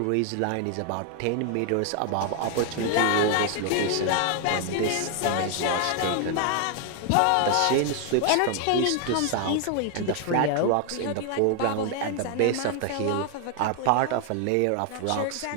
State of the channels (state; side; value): different; both; correlation 0.00